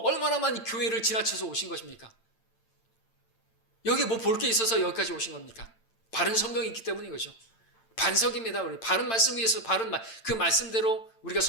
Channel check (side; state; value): right; late; 8.9 ms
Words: 얼마나 많이 교회를 지나쳐서 오신 것입니까? 여기 뭐 볼 게 있어서 여기까지 오신 겁니까? 바른 성경이 있기 때문인 거죠. 반석입니다. 우리 바른 말씀 위에서 그 말씀대로 우리가